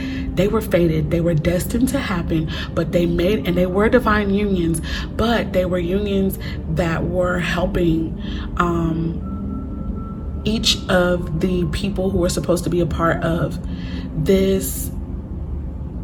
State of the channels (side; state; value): both; identical; correlation 1.00